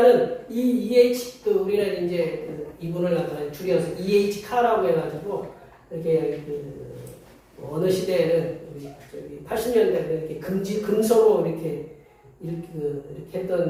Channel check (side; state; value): both; identical; correlation 1.00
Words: 이 EH, 우리는 이제 이분을 갖다가 줄여서 EH 카라고 해가지고 이렇게 어느 시대에는 우리 80년대에 이렇게 금서로 이렇게